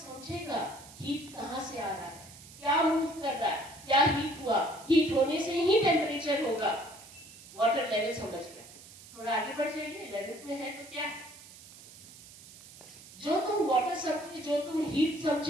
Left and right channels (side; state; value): right; noise; hiss, 19 dB below the sound